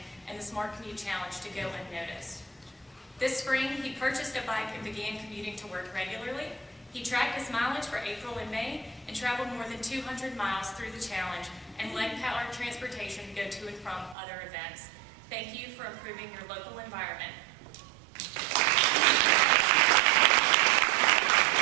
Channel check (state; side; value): drops out; left; at 14.2 s